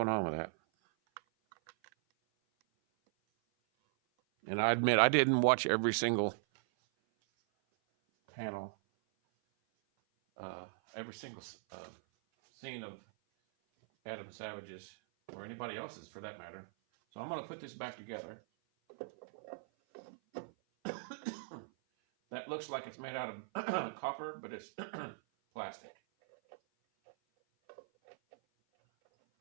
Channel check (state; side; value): silent; left; 52 dB below the other